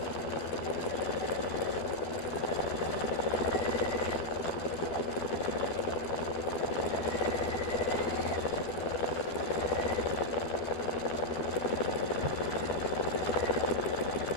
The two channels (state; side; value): late; right; 12 ms